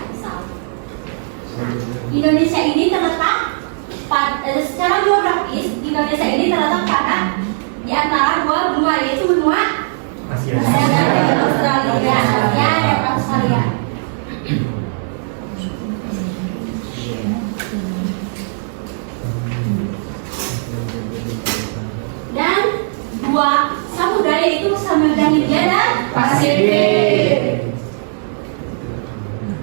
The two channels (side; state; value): left; silent; digital silence